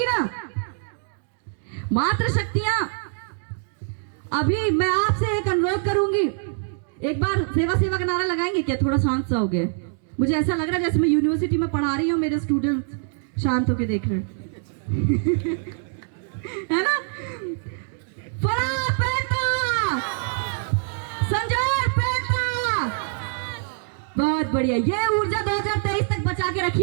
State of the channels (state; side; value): silent; left; 60 dB below the other